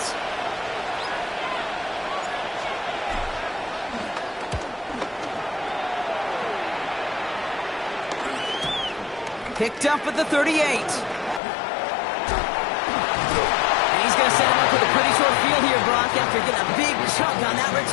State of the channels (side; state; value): right; drops out; at 11.4 s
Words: Picked up at the 38. going to set him up with a pretty short field here, Brock, after getting a big chunk on that